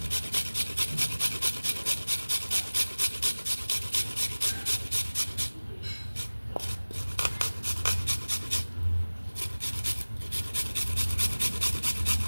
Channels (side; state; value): both; inverted; correlation -1.00